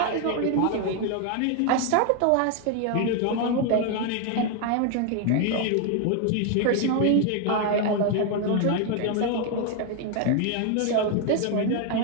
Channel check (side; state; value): both; different; correlation 0.01